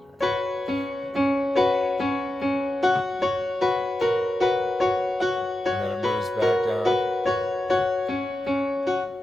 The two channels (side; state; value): both; normal; correlation 0.91